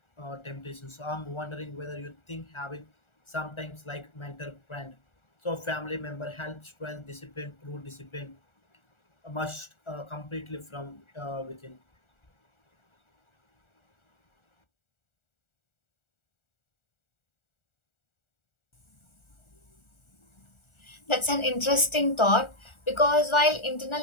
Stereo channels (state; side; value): late; right; 1.4 ms